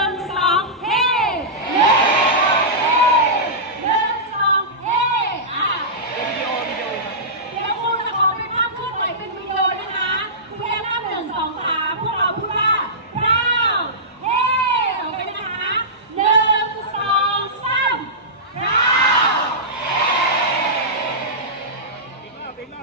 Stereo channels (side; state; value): both; normal; correlation -0.17